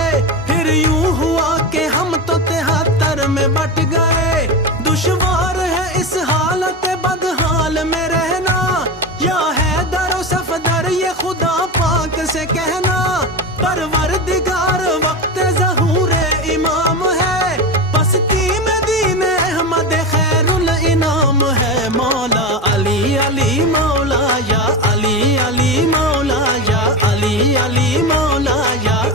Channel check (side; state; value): both; normal; correlation 0.20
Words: پھر یوں ہوا کہ ہم تو 73 میں بٹ گئے دشوار ہے اس حالت بدحال میں رہنا یا حیدر و صفدر یہ خدا پاک سے کہنا پروردگار وقت ظہور امام ہے پستی میں دین احمد خیر الانام ہے مولا علی علی مولا یا علی علی مولا یا علی علی